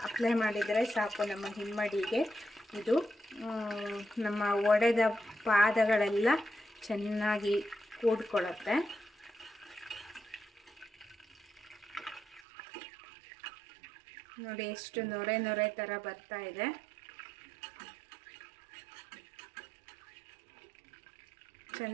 ಅಪ್ಲೈ ಮಾಡಿದರೆ ಸಾಕು ನಮ್ಮ ಹಿಮ್ಮಡಿಗೆ. ಇದು ನಮ್ಮ ಒಡೆದ ಪಾದಗಳೆಲ್ಲ ಚೆನ್ನಾಗಿ ಕೂಡ್ಕೊಳ್ಳುತ್ತೆ. ನೋಡಿ, ಎಷ್ಟು ನೊರೆ ಥರ ಬರ್ತಾ ಇದೆ.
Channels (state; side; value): drops out; left; at 12.4 s